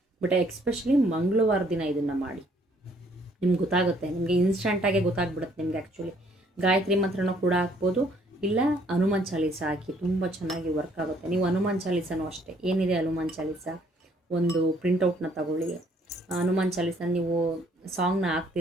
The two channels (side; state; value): both; normal; correlation 0.64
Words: ಬಟ್ ಎಕ್ಸ್ಪೆಷಲಿ ಮಂಗಳವಾರ ದಿನ ಇದನ್ನು ಮಾಡಿ, ನಿಮ್ಗೆ ಗೊತ್ತಾಗುತ್ತೆ, ನಿಮಗೆ ಇನ್ಸ್ಟಂಟಾಗೆ ಗೊತ್ತಾಗ್ಬಿಡುತ್ತೆ ನಿಮಗೆ. ಆ್ಯಕ್ಚುಲಿ ಗಾಯತ್ರಿ ಮಂತ್ರನೂ ಕೂಡ ಹಾಕ್ಬೋದು, ಇಲ್ಲ ಹನುಮಾನ್ ಚಾಲೀಸ ಹಾಕಿ, ತುಂಬ ಚೆನ್ನಾಗಿ ವರ್ಕ್ ಆಗುತ್ತೆ. ನೀವು ಹನುಮಾನ್ ಚಾಲೀಸನೂ ಅಷ್ಟೇ, ಏನಿದೆ ಹನುಮಾನ್ ಚಾಲೀಸ ಒಂದು ಪ್ರಿಂಟೌಟ್ನ ತಗೊಳ್ಳಿ. ಹನುಮಾನ್ ಚಾಲೀಸ ನೀವು ಸಾಂಗ್ನ